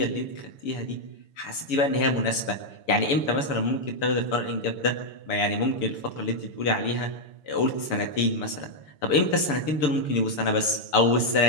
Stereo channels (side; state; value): right; late; 6.9 ms